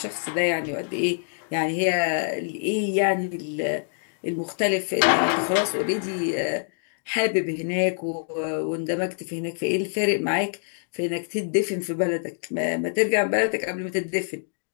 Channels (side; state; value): right; silent; digital silence